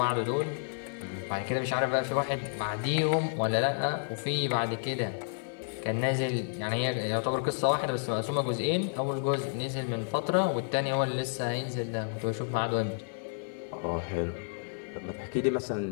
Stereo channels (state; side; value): silent; right; digital silence